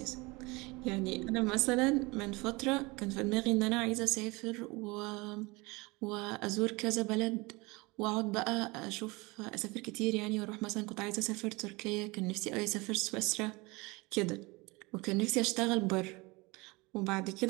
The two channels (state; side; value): quieter; left; 24.8 dB